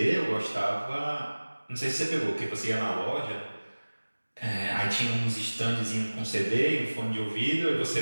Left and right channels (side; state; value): both; inverted; correlation -1.00